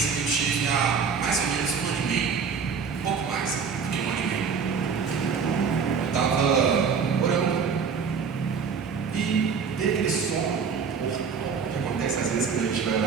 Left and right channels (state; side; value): quieter; left; 5.9 dB